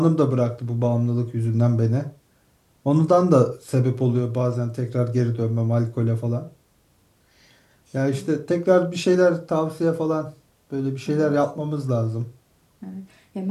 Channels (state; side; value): identical; both; correlation 1.00